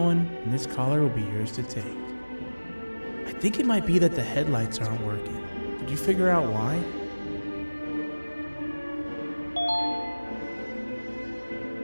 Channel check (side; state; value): both; inverted; correlation -1.00